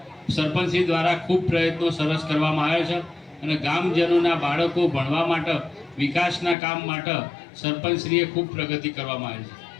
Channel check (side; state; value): right; drops out; at 6.6 s